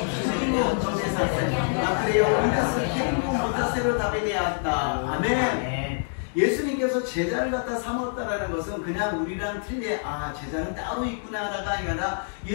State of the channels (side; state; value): right; silent; digital silence